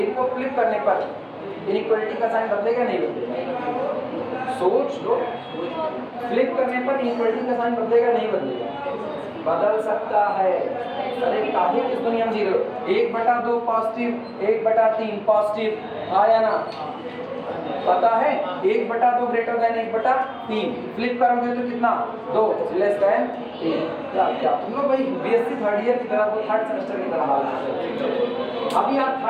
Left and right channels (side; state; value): both; identical; correlation 1.00